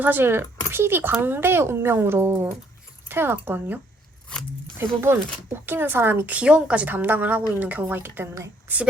사실 PD 광대의 운명으로 태어났거든요. 대부분 웃기는 사람이 귀여움까지 담당을 하고 있는 경우가 있기 때문에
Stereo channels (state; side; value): normal; both; correlation 0.67